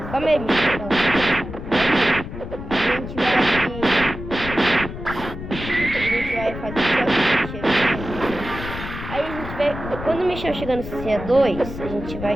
Calma aí, pessoal. A gente vai fazer aí a gente vai, quando o Michel chegar no CC2, a gente vai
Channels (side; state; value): left; noise; rumble, 9 dB below the sound